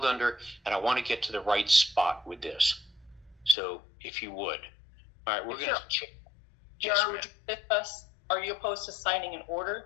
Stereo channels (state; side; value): drops out; right; at 3.6 s